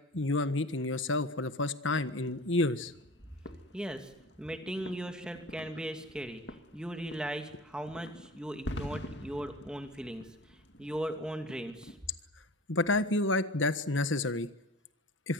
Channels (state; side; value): normal; both; correlation 0.36